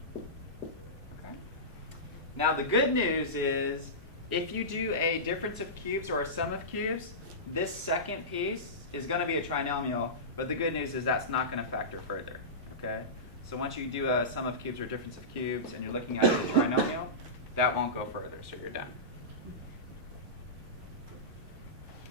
4. Okay. Now the good news is, if you do a difference of cubes or a sum of cubes, this second piece is going to be a trinomial, but the good news is that's not going to factor further, okay? So once you do a sum of cubes or difference of cubes and you're looking at the trinomial, that won't go further, so you're done.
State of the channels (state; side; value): normal; both; correlation -0.19